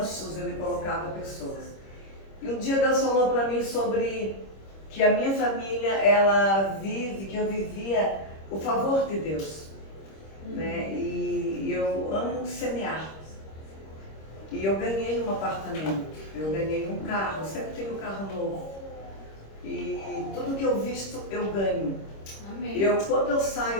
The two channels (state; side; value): late; right; 26 ms